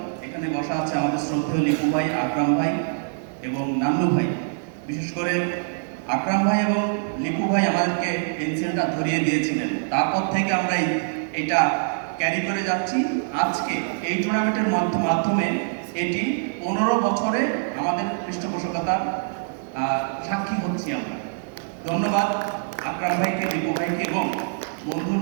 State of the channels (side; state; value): left; silent; digital silence